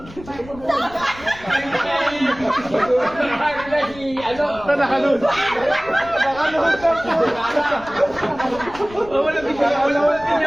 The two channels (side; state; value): left; noise; rumble, 19 dB below the sound